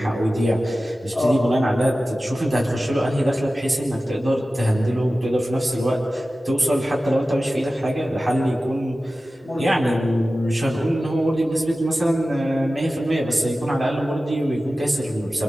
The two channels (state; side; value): normal; both; correlation 0.95